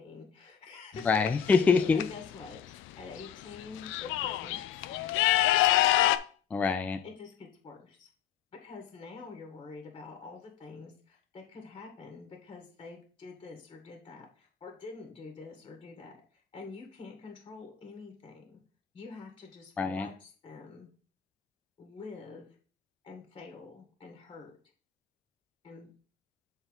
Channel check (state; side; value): quieter; right; 8.0 dB